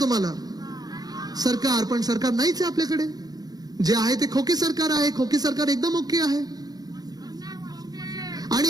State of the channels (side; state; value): left; late; 0.19 ms